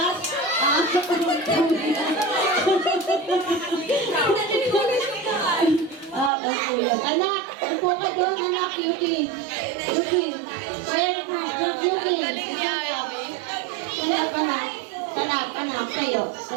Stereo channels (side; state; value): left; drops out; at 6.3 s